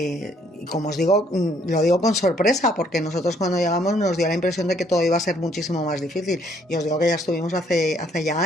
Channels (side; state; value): both; normal; correlation 0.65